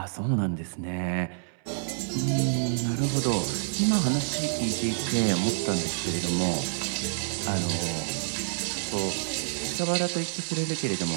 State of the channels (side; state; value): left; silent; 59 dB below the other